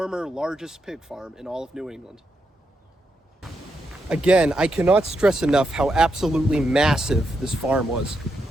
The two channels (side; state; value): both; normal; correlation 0.83